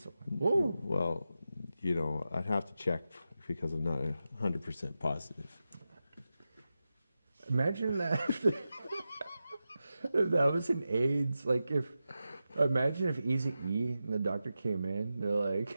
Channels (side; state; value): both; inverted; correlation -0.91